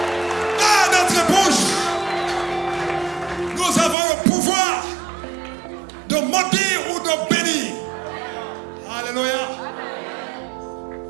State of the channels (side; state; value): left; drops out; at 4.0 s